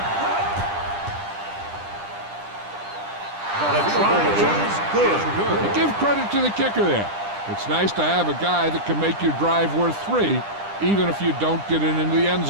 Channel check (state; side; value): late; left; 10 ms